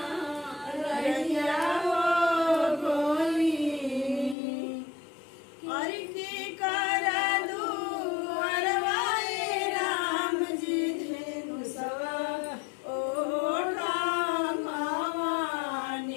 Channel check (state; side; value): drops out; right; at 4.4 s